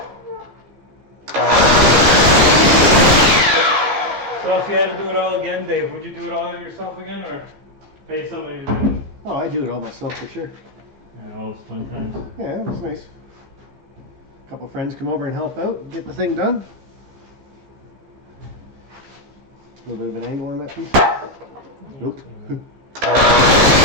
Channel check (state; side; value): late; left; 15 ms